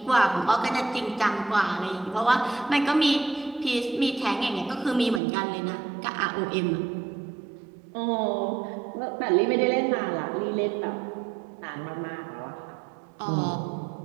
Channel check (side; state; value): left; drops out; at 5.2 s